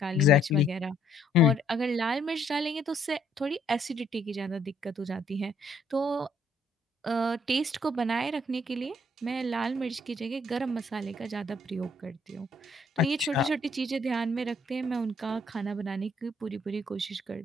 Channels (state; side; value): normal; both; correlation 0.66